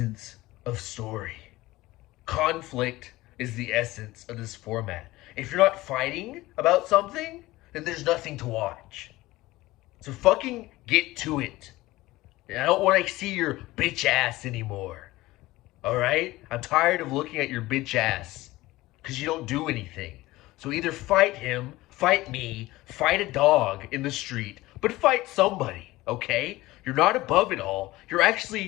of story. Conflict is the essence of this format. If you're not fighting about something, then there's nothing to watch. So fucking get to it. And I don't want to see your bitch ass anymore. Alright? I'm tired of looking at your bitch ass. Because you don't do anything. So either fight him, fight me, fight a dog in the street, but fight somebody, okay? You're not above it all. You're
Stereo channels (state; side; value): quieter; right; 18.5 dB